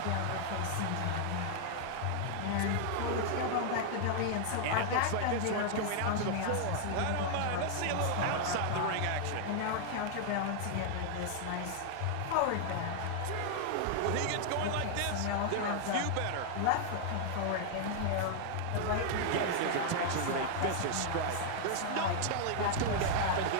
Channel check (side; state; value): both; different; correlation 0.00